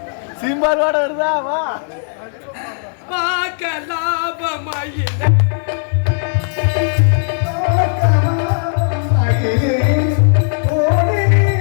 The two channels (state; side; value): silent; right; digital silence